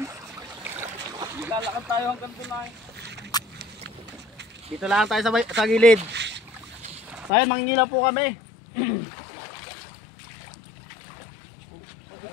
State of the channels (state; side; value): drops out; right; at 7.3 s